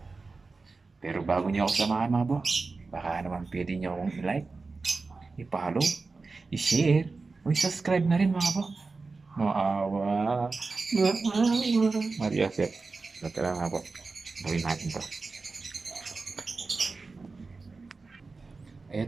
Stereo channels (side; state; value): left; quieter; 4.0 dB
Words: Pero bago nyo ako samahan mga bok, baka naman pwede nyo akong i-like, i-follow, i-share, o i-subscribe na rin mga bok. Maawa. Maria Joseph. So tara mga bok, gawin natin to.